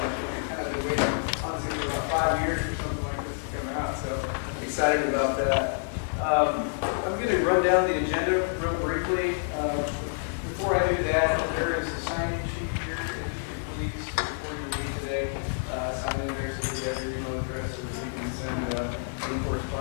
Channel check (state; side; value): silent; right; digital silence